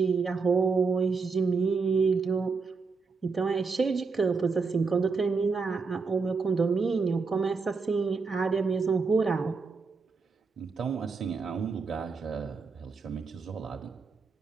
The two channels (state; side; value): quieter; left; 4.7 dB